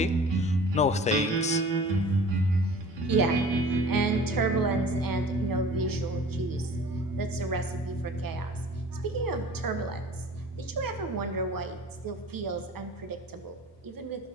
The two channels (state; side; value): normal; both; correlation 0.44